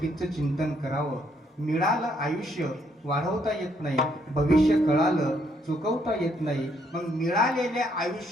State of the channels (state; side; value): normal; both; correlation 0.71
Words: चिंतन करावं. मिळालं आयुष्य वाढवता येत नाही, भविष्य कळालं चुकवता येत नाही. मग मिळालेल्या